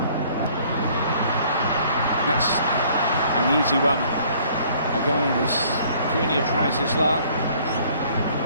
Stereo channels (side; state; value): both; inverted; correlation -0.58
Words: That's an easy one. Again, as Cunha tries his luck.